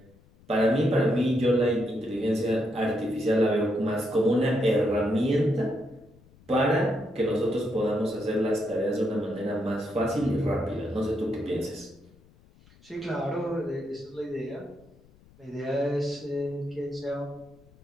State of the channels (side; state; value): left; noise; rumble, 27 dB below the sound